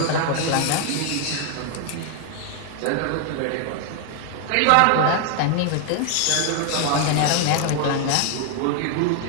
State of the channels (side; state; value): both; different; correlation 0.00